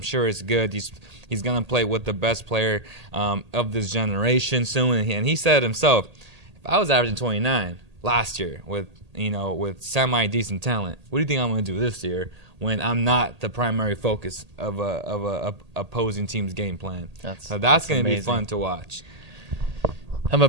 sure it's good. He's gonna play with the best player of this generation soon. And he said himself, if I was averaging 29 last year with semi-decent talent, what do you think I'm gonna do this year when I'm not the primary focus of a opposing team's game plan? So that's gonna be fun to watch. I'm a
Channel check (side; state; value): left; late; 1.8 ms